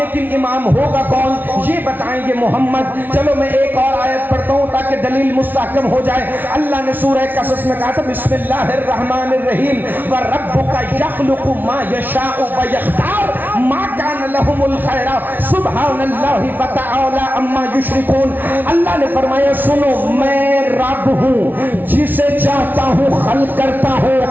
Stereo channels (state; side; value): late; left; 0.087 ms